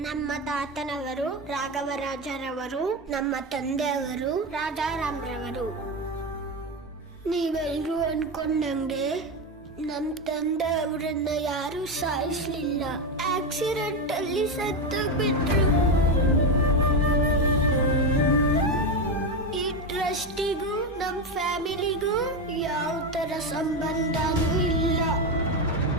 ನಮ್ಮ ತಾತನವರು ರಾಘವರಾಜರವರು, ನಮ್ಮ ತಂದೆಯವರು ರಾಜಾರಾಮ್ರವರು. ನೀವೆಲ್ಲರೂ ಅನ್ಕೊಂಡಂಗೆ ನಮ್ಮ ತಂದೆ ಅವರನ್ನ ಯಾರು ಸಾಯಿಸ್ಲಿಲ್ಲ, ಆಕ್ಸಿಡೆಂಟ್ ಅಲ್ಲಿ ಸತ್ತೋಗ್ಬಿಟ್ರು. ಈ ಟ್ರಸ್ಟಿಗೂ ನಮ್ಮ ಫ್ಯಾಮಿಲಿಗೂ ಯಾವ ತರ ಸಂಬಂಧನೂ ಇಲ್ಲ.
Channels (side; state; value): both; normal; correlation 0.13